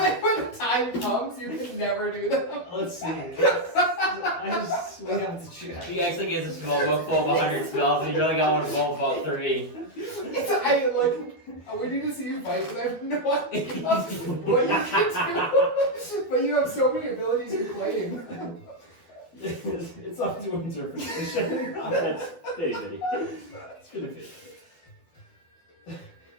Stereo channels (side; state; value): right; late; 12 ms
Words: when the time comes, you can never do them. Let's see. We have to check. He actually gives a small book full of 100 spells, and you really got one full of about 3. We need to see you fight because I have no idea what you can do. But you have so many abilities you claim. It's up to interpretation. That's bitty bitty. It's gonna fit.